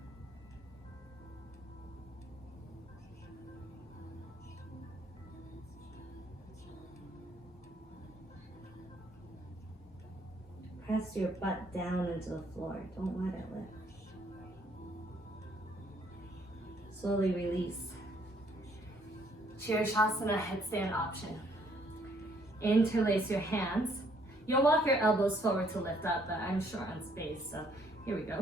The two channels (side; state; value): both; normal; correlation 0.66